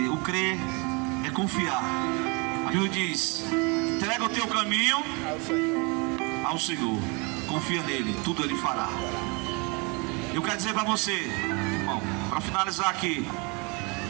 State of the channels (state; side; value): quieter; left; 30.2 dB